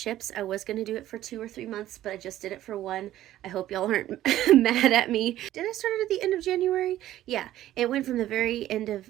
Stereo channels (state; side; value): quieter; left; 13.6 dB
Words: I was going to do it for 2 or 3 months, but I just did it for 1. I hope y'all aren't mad at me. Did I start it at the end of January? Yeah, it went from the very end of